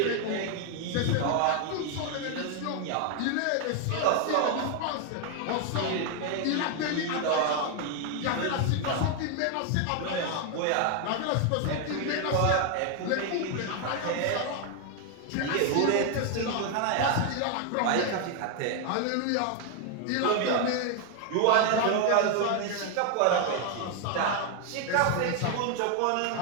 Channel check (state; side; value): different; both; correlation 0.01